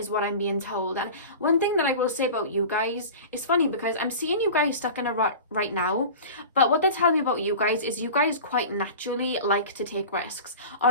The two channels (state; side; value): inverted; both; correlation -0.35